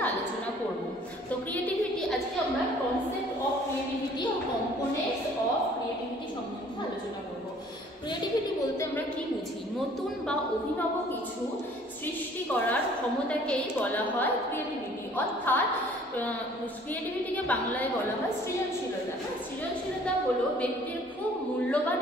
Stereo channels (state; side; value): normal; both; correlation 0.55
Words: আলোচনা করব। তো ক্রিয়েটিভিটি, আজকে আমরা কনসেপ্ট অফ ক্রিয়েটিভিটি ও কম্পোনেন্টস অফ ক্রিয়েটিভিটি সম্বন্ধে আলোচনা করব। ক্রিয়েটিভিটি বলতে আমরা কি বুঝি? নতুন বা অভিনব কিছু সৃষ্টি করার ক্ষমতাকেই বলা হয় ক্রিয়েটিভিটি। অর্থাৎ ক্রিয়েটিভিটিকে বাংলায় বলা হয় সৃজনশীলতা। সৃজনশীলতা হলো ব্যক্তির খুব মূল্যবান